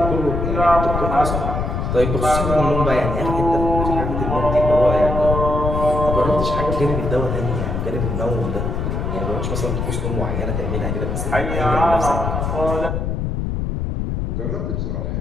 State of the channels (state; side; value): noise; left; rumble, 2 dB below the sound